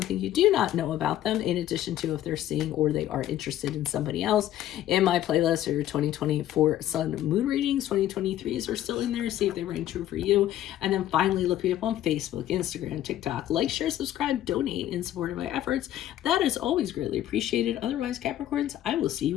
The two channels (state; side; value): quieter; right; 12.6 dB